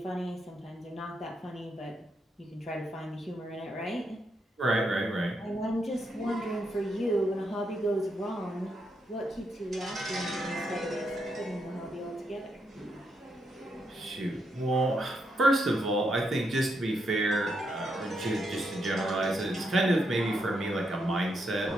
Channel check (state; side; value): normal; both; correlation 0.80